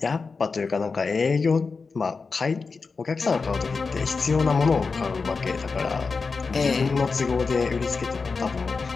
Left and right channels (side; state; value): right; quieter; 4.6 dB